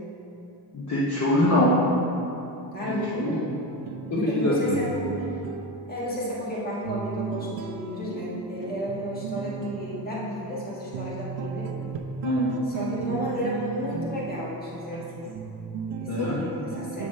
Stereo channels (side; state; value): both; normal; correlation 0.23